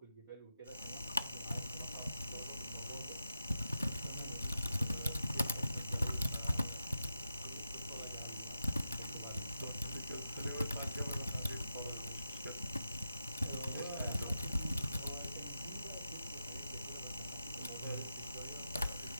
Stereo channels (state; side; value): inverted; both; correlation -0.87